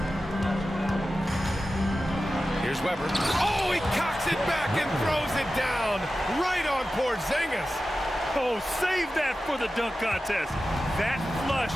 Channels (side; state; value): both; normal; correlation 0.94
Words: Here's Weber. Oh, he cocks it back and throws it down right on Porzingis. Oh, save that for the dunk contest. That flush